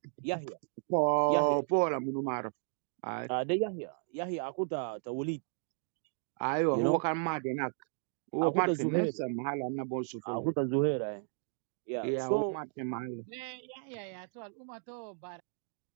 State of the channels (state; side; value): silent; left; 55 dB below the other